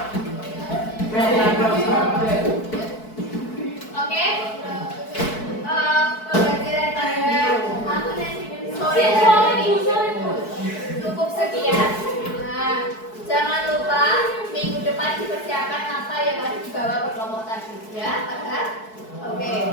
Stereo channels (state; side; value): late; right; 4.6 ms